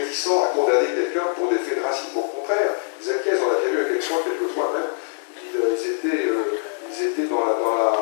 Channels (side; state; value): right; silent; digital silence